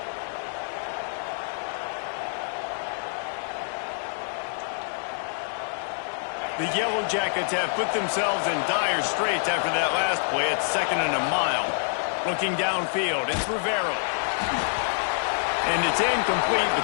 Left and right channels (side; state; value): right; silent; digital silence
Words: The Yellow Jackets have put themselves in dire straits after that last play. It's 2nd and a mile. Looking downfield, it's Rivero. And it's incomplete,